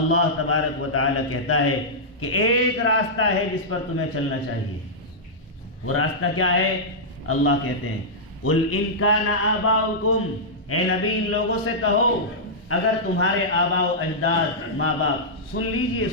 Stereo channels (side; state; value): both; normal; correlation -0.11